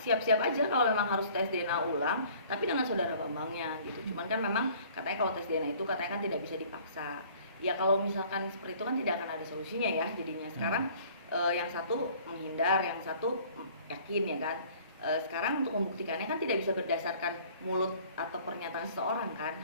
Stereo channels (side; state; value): both; inverted; correlation -0.53